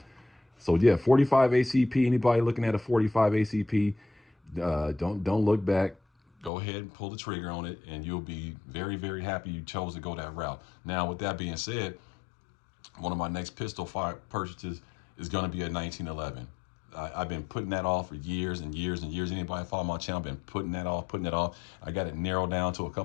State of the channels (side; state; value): right; drops out; at 6.5 s